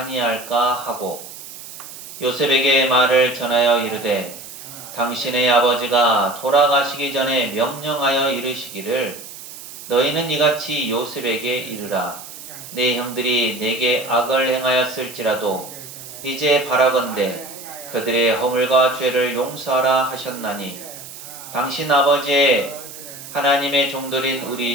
하고 요셉에게 말을 전하여 이르되 당신의 아버지가 돌아가시기 전에 명령하여 이르시기를 너희는 이같이 요셉에게 이르라. 내 형들이 내게 악을 행하였을지라도 이제 바라건대 그들의 허물과 죄를 용서하라 하셨나니 당신 아버지의 하나님의 종들인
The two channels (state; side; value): noise; right; hiss, 14 dB below the sound